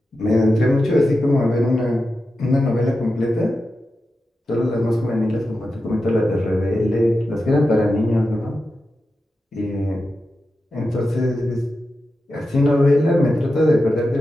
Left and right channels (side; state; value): both; normal; correlation 0.91